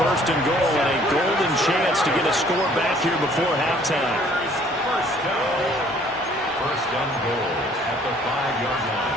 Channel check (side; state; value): both; normal; correlation 0.58